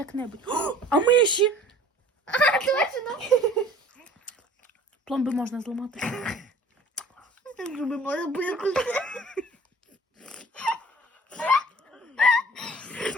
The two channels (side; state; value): both; normal; correlation 0.49